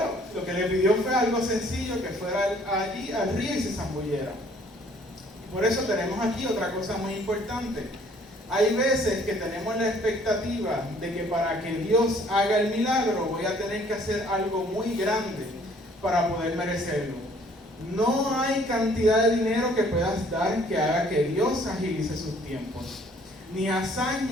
lo que le pidió fue algo sencillo, que fuera allí al río y se zambullera. Por eso tenemos aquí otra cosa muy importante. Hay veces que tenemos la expectativa de que para que Dios haga el milagro voy a tener que hacer algo muy grande para poder merecerlo. No hay cantidad de dinero que puedas dar que haga que Dios agilice sus tiempos, ni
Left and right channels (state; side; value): normal; both; correlation 0.59